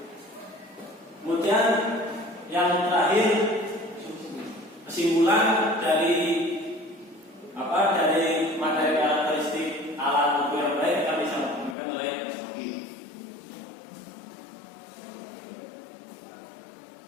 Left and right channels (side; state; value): right; drops out; at 11.8 s